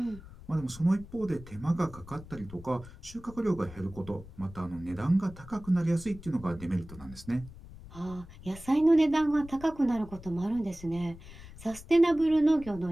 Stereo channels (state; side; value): noise; left; rumble, 17 dB below the sound